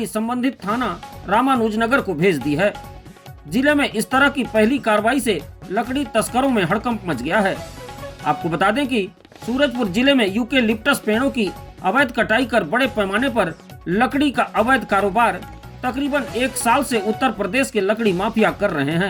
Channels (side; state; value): both; identical; correlation 1.00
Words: संबंधित थाना रामानुजनगर को भेज दी है। जिले में इस तरह की पहली कार्रवाई से लकड़ी तस्करों में हड़कंप मच गया है। आपको बता दें कि सूरजपुर जिले में यूकेलिप्टस पेड़ों की अवैध कटाई कर बड़े पैमाने पर लकड़ी का अवैध कारोबार तकरीबन 1 साल से उत्तर प्रदेश के लकड़ी माफिया कर रहे